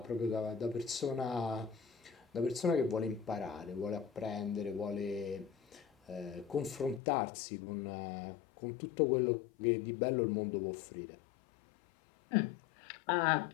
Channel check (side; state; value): right; drops out; at 7.0 s